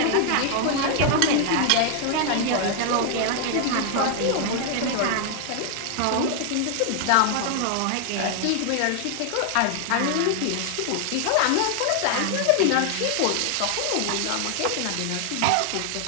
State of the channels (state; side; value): different; both; correlation 0.00